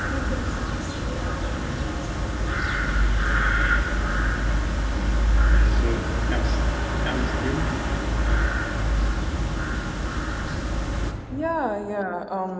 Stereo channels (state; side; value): identical; both; correlation 1.00